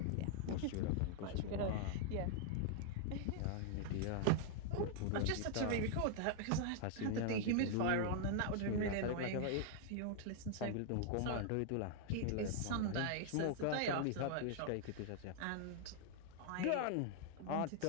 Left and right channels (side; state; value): both; different; correlation 0.00